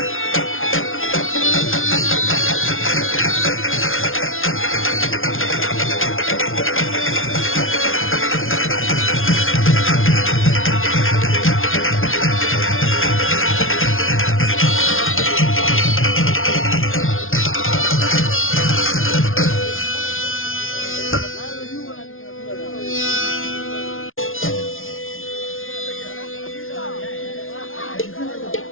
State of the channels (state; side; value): late; right; 0.60 ms